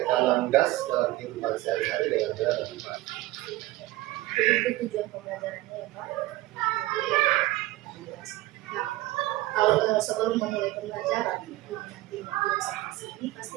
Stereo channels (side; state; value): left; quieter; 17.8 dB